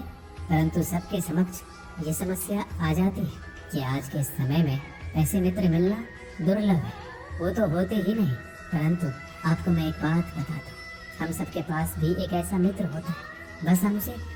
परंतु सबके समक्ष ये समस्या आ जाती है कि आज के समय में ऐसे मित्र मिलना दुर्लभ है। वो तो होते ही नहीं। परंतु आपको मैं एक बात बता दूं, हम सबके पास भी एक ऐसा मित्र होता है, बस हम उसे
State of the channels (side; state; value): both; identical; correlation 1.00